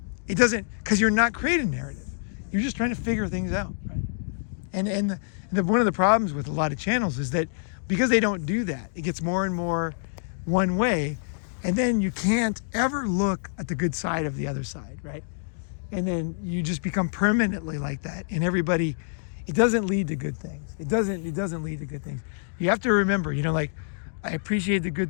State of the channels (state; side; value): silent; right; digital silence